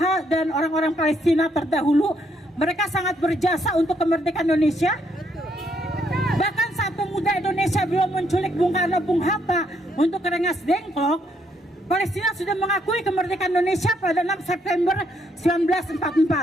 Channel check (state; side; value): normal; both; correlation 0.72